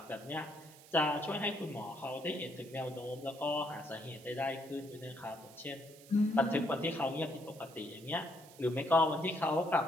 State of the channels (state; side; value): noise; right; hiss, 21 dB below the sound